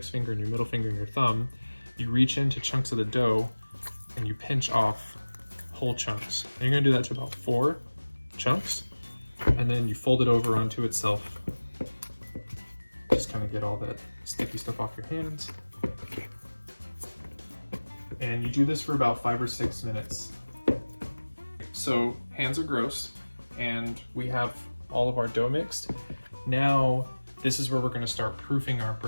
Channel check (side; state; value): both; inverted; correlation -1.00